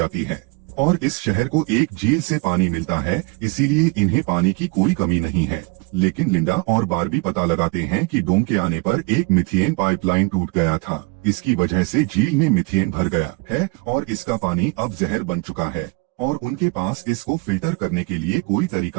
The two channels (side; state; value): left; quieter; 26.1 dB